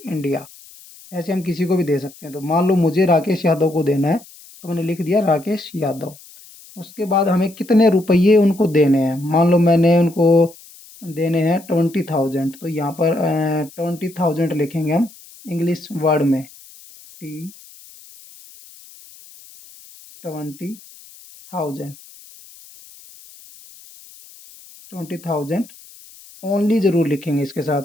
इंडिया। ऐसे हम किसी को भी दे सकते हैं। तो मान लो मुझे राकेश यादव को देना है, तो मैंने लिख दिया राकेश यादव। उसके बाद हमें कितने रुपये उनको देने हैं, मान लो मैंने उनको देने हैं 20,000, तो यहाँ पर 20,000 लिखेंगे हम इंग्लिश वर्ड में। T 20,000, 20,000 ओनली ज़रूर लिखेंगे इसके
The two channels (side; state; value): left; noise; hiss, 22 dB below the sound